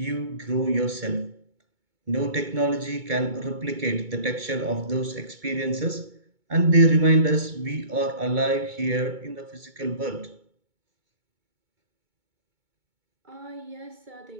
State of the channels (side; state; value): left; late; 2.2 ms